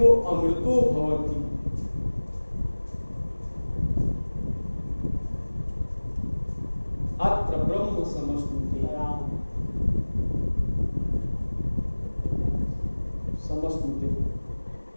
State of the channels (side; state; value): both; inverted; correlation -1.00